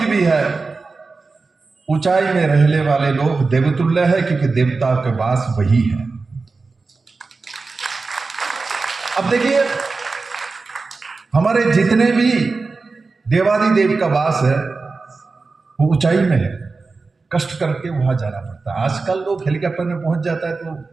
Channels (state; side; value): quieter; left; 4.1 dB